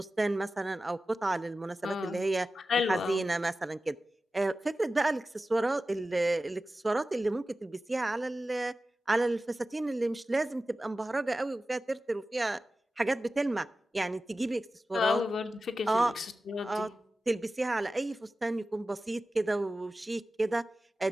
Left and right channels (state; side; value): normal; both; correlation 0.94